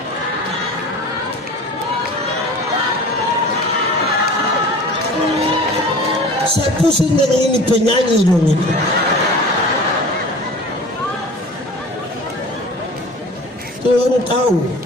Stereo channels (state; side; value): normal; both; correlation 0.40